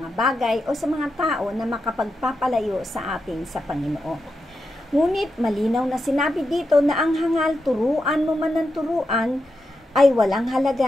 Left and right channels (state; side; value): normal; both; correlation 0.87